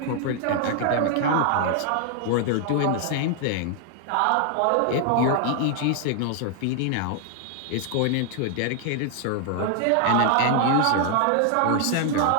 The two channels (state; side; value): different; both; correlation 0.00